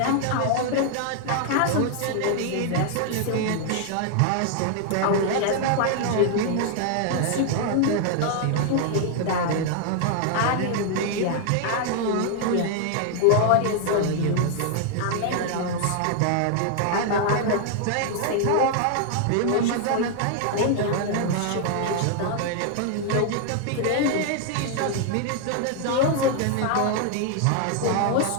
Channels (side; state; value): both; different; correlation 0.00